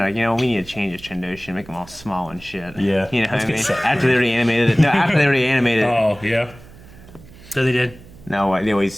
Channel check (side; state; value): right; noise; hum, 21 dB below the sound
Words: we need to change his Trandoshia, make him all small and shit. Yeah. You know what Let's I get mean? Seth After they already animated it. No, after they already animated it. Oh, yeah. So they did. No, they